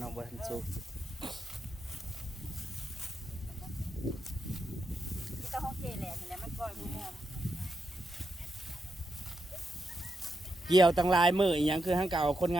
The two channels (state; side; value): normal; both; correlation 0.84